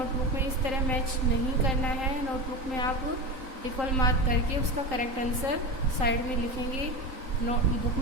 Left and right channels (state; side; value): late; left; 3.8 ms